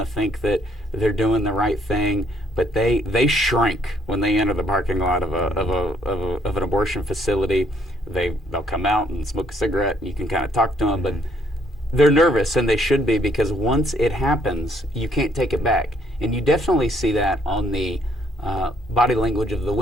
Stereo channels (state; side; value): normal; both; correlation 0.68